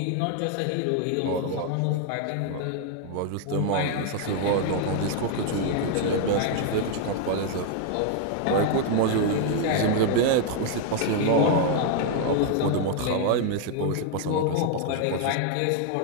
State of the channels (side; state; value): both; different; correlation 0.00